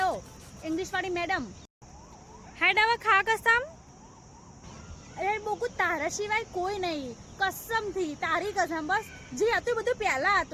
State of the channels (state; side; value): identical; both; correlation 1.00